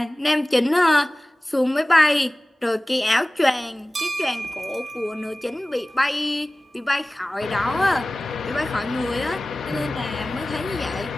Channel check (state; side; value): normal; both; correlation 0.98